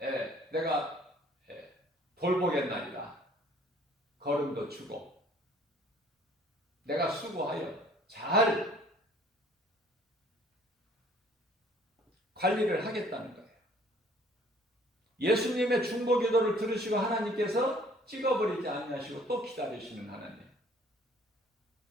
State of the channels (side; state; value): both; normal; correlation 0.56